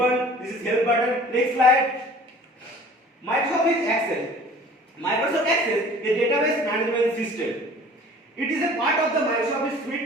This is help button. Next slide. Microsoft Access. Microsoft Access is a database management system. It is a part of the Microsoft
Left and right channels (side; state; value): both; normal; correlation 0.47